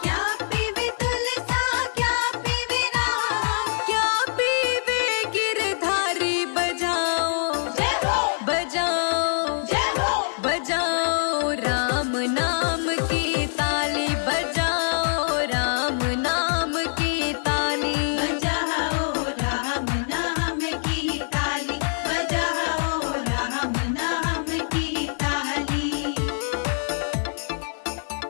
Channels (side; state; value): right; silent; digital silence